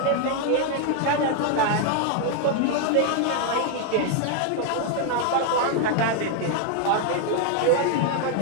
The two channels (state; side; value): different; both; correlation 0.00